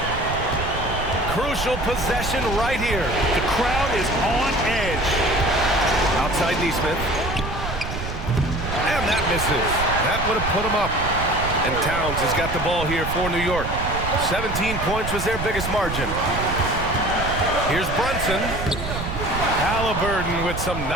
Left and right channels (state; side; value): noise; right; rumble, 6 dB below the sound